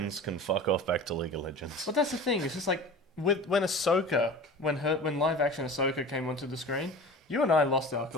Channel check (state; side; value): normal; both; correlation 0.37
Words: can fuck off back to League of Legends. But that's the thing. It's just like when Ahsoka, when live action Ahsoka came onto the screen, you and I lost our